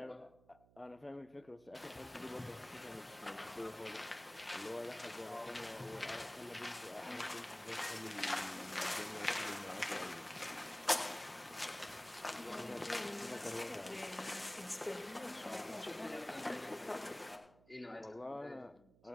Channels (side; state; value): right; noise; hum, 25 dB below the sound